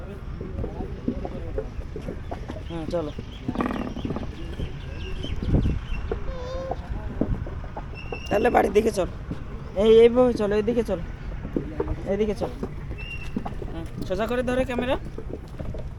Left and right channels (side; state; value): both; identical; correlation 1.00